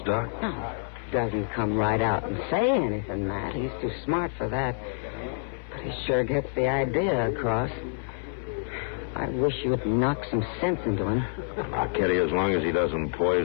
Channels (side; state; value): right; silent; 60 dB below the other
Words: Doc? No, he doesn't come right out and say anything, Matt. He's too smart for that. But he sure gets the idea across. I wish you'd knock some sense into him. Now, Kitty, as long as he doesn't